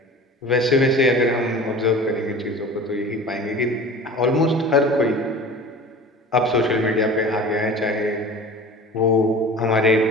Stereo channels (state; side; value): normal; both; correlation 0.39